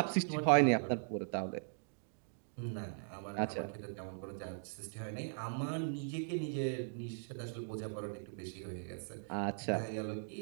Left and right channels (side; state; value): left; silent; digital silence